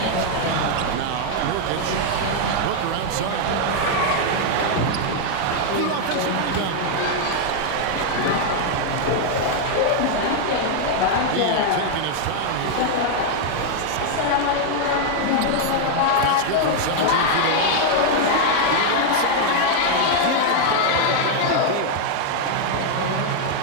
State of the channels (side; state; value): both; different; correlation 0.00